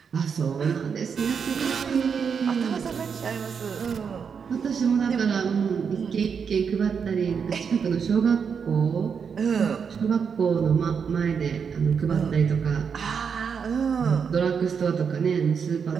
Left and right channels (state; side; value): quieter; left; 6.5 dB